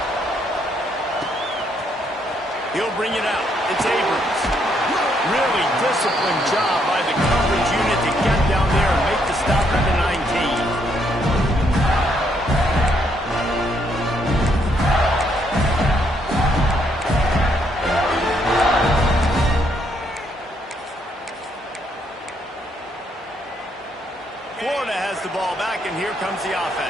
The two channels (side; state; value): both; normal; correlation 0.73